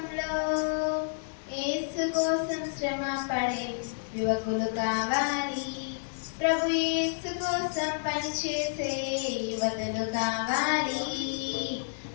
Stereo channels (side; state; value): right; silent; digital silence